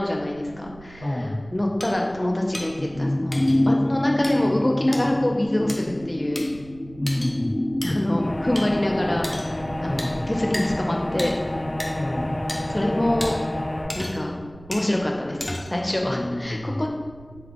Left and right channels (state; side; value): noise; right; rumble, 21 dB below the sound